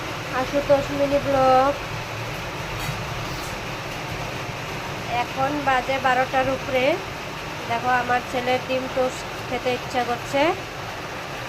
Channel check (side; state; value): both; identical; correlation 1.00